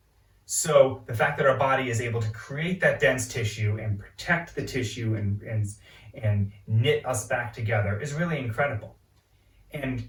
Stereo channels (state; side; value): identical; both; correlation 1.00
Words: So the fact that our body is able to create that dense tissue and protect the tissue and knit us back together is really incredible. And